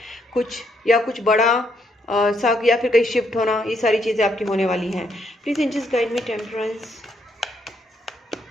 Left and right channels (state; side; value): normal; both; correlation 0.74